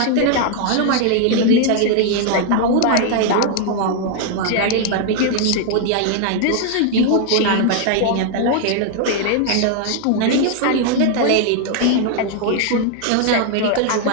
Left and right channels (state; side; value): different; both; correlation 0.00